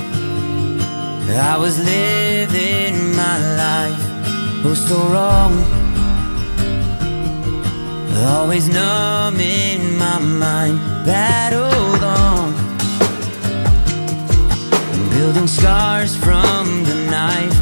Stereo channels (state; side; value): inverted; both; correlation -1.00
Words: I was living my life, oh so wrong, always numb in my mind, battled on, building scars from the knife,